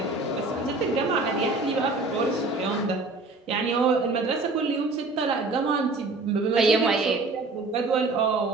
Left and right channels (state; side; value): quieter; left; 3.4 dB